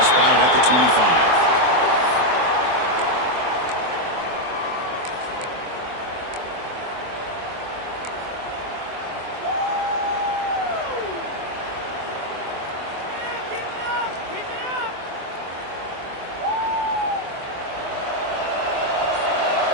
spotted at the 25.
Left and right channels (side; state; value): left; late; 24 ms